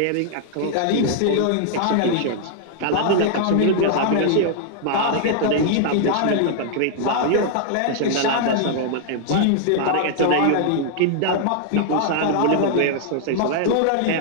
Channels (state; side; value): different; both; correlation -0.01